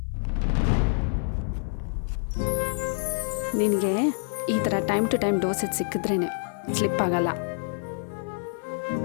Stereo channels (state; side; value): silent; right; 60 dB below the other